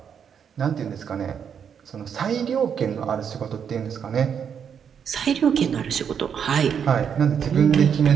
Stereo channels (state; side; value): quieter; left; 7.6 dB